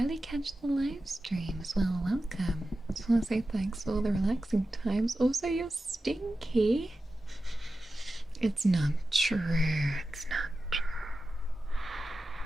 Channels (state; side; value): normal; both; correlation 0.93